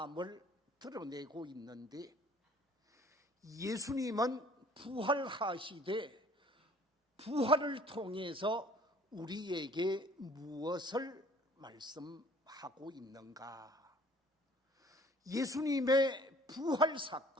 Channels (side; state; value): both; normal; correlation 0.53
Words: 드러내고 있는데, 예수님은 부활하시되 부활을 통해서 우리에게 무엇을 말씀하고 있는가? 예수님의 부활